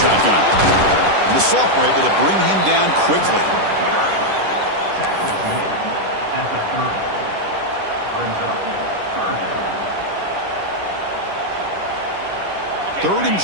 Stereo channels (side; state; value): left; late; 10 ms